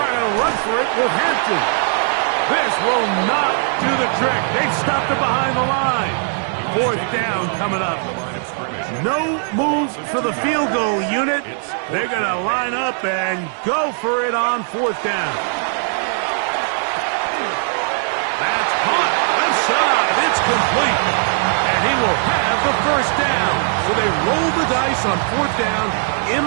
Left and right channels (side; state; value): left; silent; 60 dB below the other